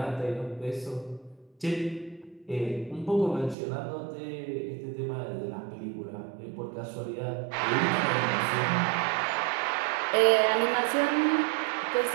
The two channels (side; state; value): left; drops out; at 3.6 s